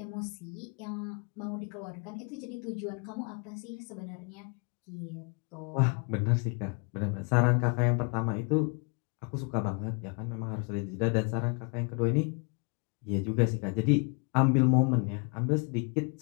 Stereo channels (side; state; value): right; quieter; 35.8 dB